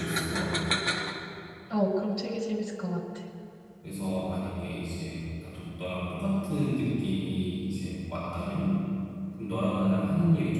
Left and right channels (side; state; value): both; identical; correlation 1.00